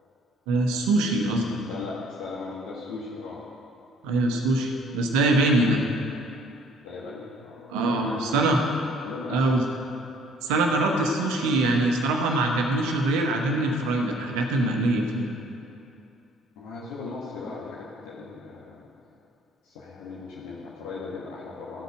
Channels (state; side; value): normal; both; correlation 0.58